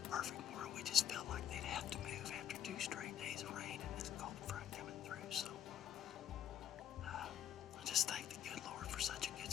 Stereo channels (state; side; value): quieter; right; 10.0 dB